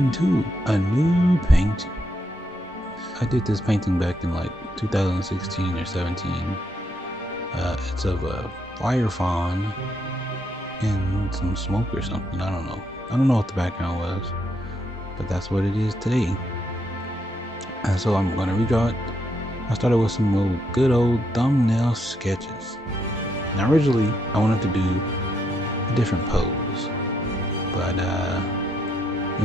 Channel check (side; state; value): both; normal; correlation 0.77